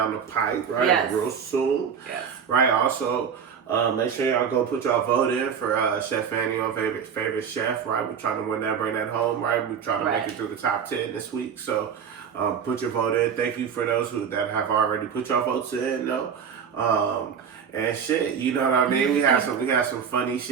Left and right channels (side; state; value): left; quieter; 7.2 dB